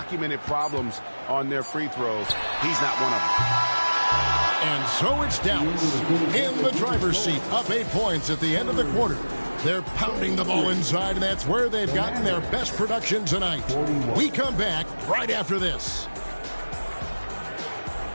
problems on their free throws. He's not one of them. And so it's Dallas in the driver's seat, up 8 points at the end of the quarter. They're pounding the ball inside, and that's where they've gotten their best production tonight. We come back right after this.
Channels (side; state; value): both; inverted; correlation -1.00